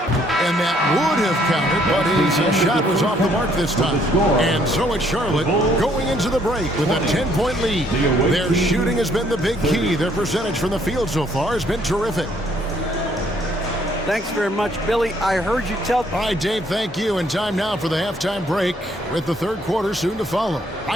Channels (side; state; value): both; normal; correlation 0.66